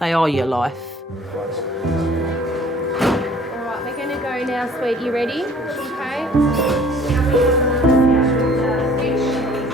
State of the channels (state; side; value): normal; both; correlation 0.53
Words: They are your life. All right, we're going to go now, sweet. You ready? Okay.